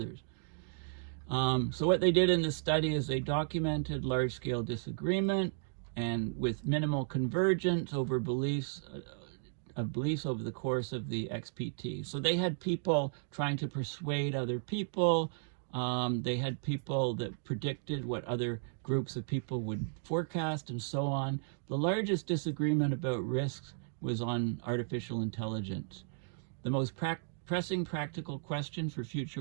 So what they did in this study is they documented large-scale disagreement and with minimal convergence over beliefs over the course of the XPT. So they had people trying to persuade other people. They had people that predicted what other groups of people would forecast and so on. The largest disagreement about risks was on artificial intelligence. The most pressing practical question for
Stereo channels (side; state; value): left; silent; digital silence